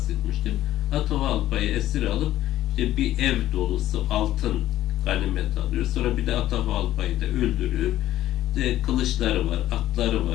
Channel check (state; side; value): quieter; right; 13.8 dB